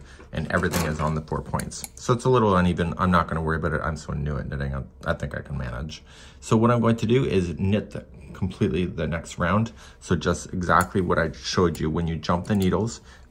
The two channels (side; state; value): both; identical; correlation 1.00